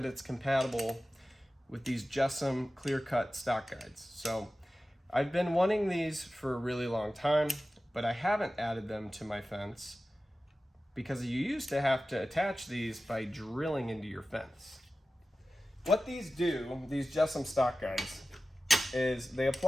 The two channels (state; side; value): normal; both; correlation 0.95